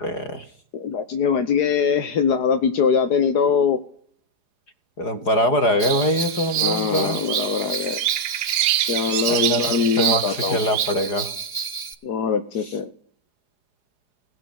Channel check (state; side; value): late; right; 4.8 ms